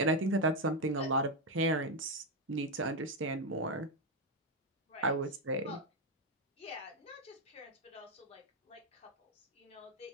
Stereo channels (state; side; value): normal; both; correlation 0.05